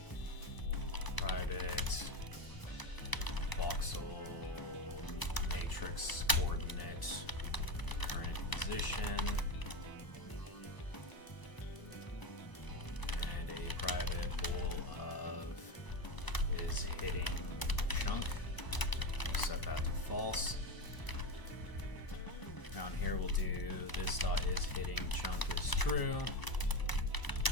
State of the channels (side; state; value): right; late; 1.0 ms